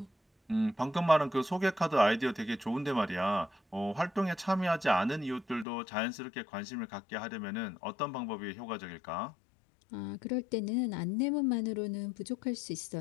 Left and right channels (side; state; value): right; drops out; at 5.7 s